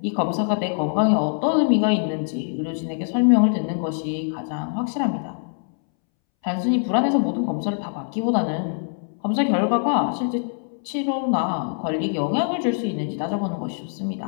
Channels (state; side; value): silent; right; 63 dB below the other